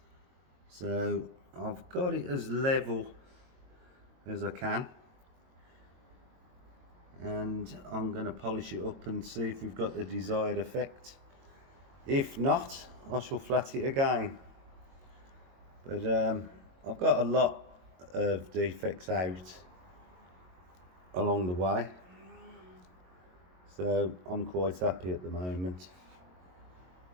So I've got it as level as I can, and I'm going to polish it up and see if we've got the desired effect. If not, I shall flat it again. But I've got a lot of defects out along the way, so I'm quite happy at the moment.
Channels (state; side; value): late; left; 22 ms